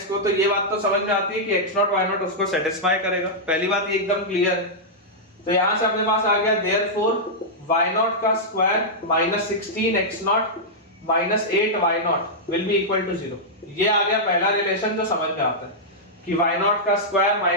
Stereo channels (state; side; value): normal; both; correlation -0.08